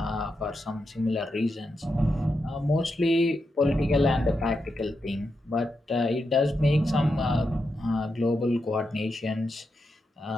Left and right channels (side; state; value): both; normal; correlation 0.86